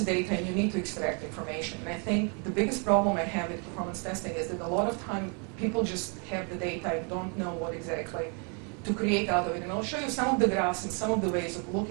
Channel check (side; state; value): left; quieter; 36.7 dB